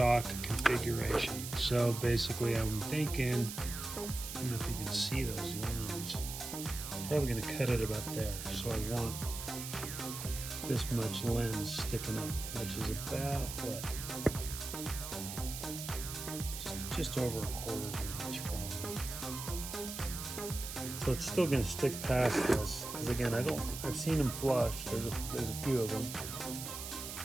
configuration. So basically I'm thinking, I don't know if you can see those lines. I'm probably gonna cut it about there. So I want this much lens sticking up, which is about what? Just over a quarter of an inch probably. So it's still going to stick past this, because again, I've seen them flush. There's a few of them.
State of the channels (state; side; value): noise; right; hiss, 7 dB below the sound